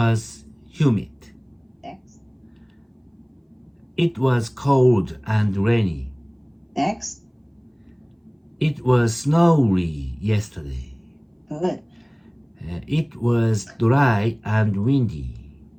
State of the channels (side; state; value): both; identical; correlation 1.00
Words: humid. Next. It was cold and rainy. Next. It was snowy yesterday. Good. It was dry and windy.